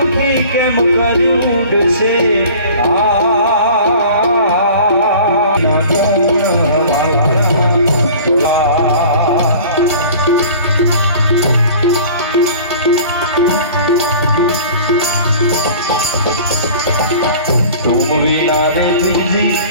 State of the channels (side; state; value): both; inverted; correlation -0.44